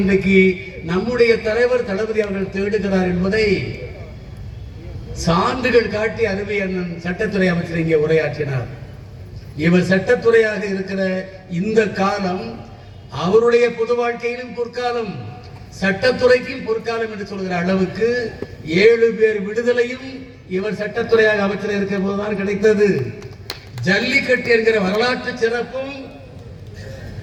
நம்முடைய தலைவர் தளபதி அவர்கள் தேடுகிறார் என்பதை சான்றுகள் காட்டி அருமை அண்ணன் சட்டத்துறை அமைச்சர் இங்கே உரையாற்றினார். இவர் சட்டத்துறையாக இருக்கிற இந்த காலம் அவருடைய பொது வாழ்க்கையிலும் பொற்காலம், சட்டத்துறைக்கும் பொற்காலம் என்று சொல்கிற அளவுக்கு 7 பேர் விடுதலையும் இவர் சட்டத்துறையாக அமைச்சர் இருக்கிற போதுதான் கிடைத்தது. ஜல்லிக்கட்டு என்கிற வரலாற்று சிறப்பும்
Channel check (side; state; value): both; identical; correlation 1.00